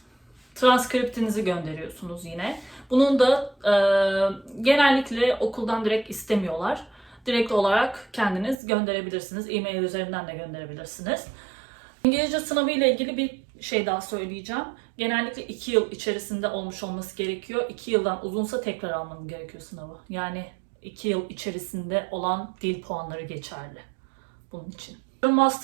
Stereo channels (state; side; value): drops out; left; at 8.6 s